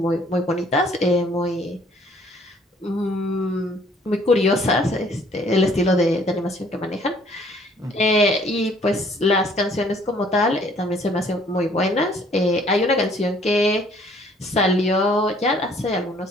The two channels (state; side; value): normal; both; correlation 0.60